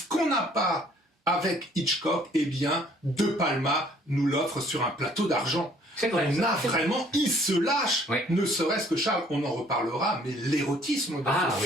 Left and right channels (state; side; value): normal; both; correlation 0.60